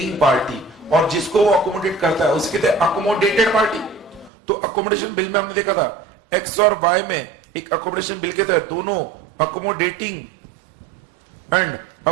पार्टी, और जिसको वो अकोमोडेट करता है उसको कहते हैं अकोमोडेटेड पार्टी। तो अकोमोडेशन बिल में हमने देखा था एक्स और वाई में एक अकोमोडेशन बिल के तहत दोनों अकोमोडेटिंग एंड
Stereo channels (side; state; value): left; drops out; at 4.3 s